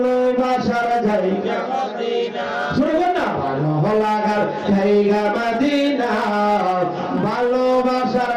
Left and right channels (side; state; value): both; identical; correlation 1.00